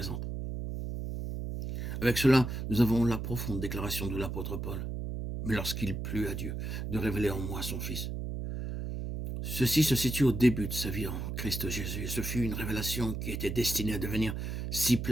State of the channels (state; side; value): noise; right; hum, 4 dB below the sound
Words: Avec cela, nous avons la profonde déclaration de l'apôtre Paul. Mais lorsqu'il plut à Dieu de révéler en moi son Fils. Ceci se situe au début de sa vie en Christ Jésus. Et ce fut une révélation qui était destinée à devenir si